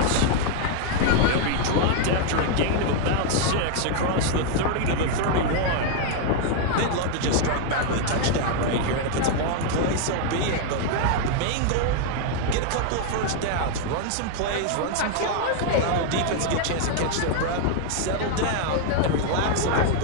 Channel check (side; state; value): both; different; correlation 0.00